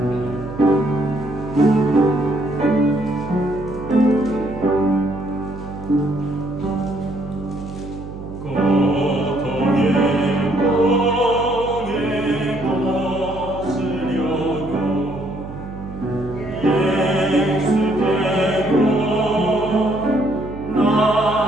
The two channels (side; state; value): right; noise; hum, 11 dB below the sound